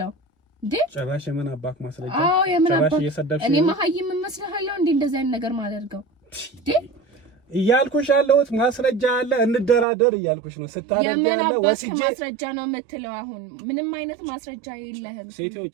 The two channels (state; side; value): drops out; left; at 9.9 s